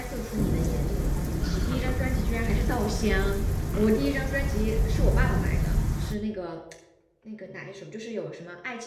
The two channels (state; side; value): identical; both; correlation 1.00